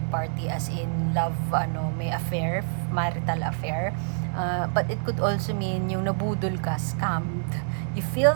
party as in love, may affair, marital affair, but it could also mean yung nabudol ka, scammed. You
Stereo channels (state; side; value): silent; left; digital silence